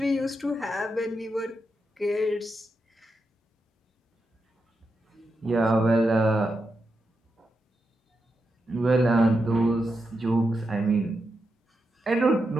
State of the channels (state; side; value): normal; both; correlation 0.86